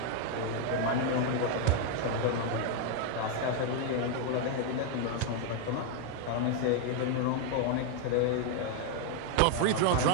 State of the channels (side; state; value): both; different; correlation 0.01